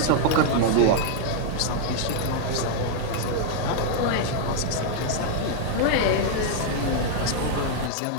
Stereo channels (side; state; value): both; different; correlation 0.00